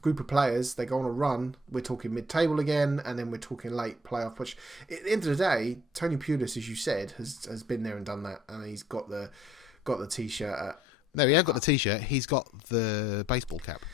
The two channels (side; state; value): both; normal; correlation 0.62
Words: group of players, they go on a run. We're talking mid-table again, and then we're talking late playoff push. At the end of the day, Tony Pulis, as you said, has been there and done that, and he's got the t-shirt. No, he hasn't got the t-shirt. He's got the baseball cap.